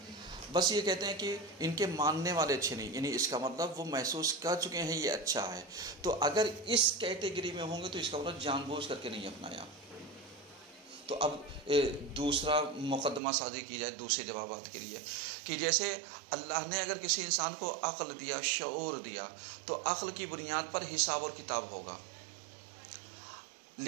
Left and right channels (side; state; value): left; drops out; at 13.2 s